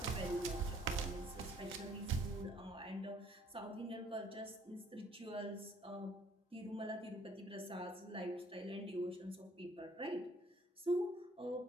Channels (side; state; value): both; normal; correlation 0.61